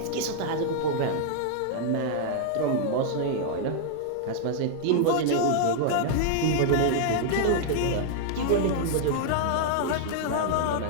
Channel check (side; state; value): both; different; correlation -0.01